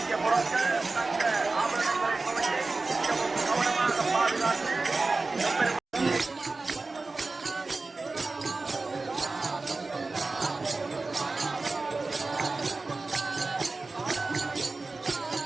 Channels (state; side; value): quieter; left; 3.6 dB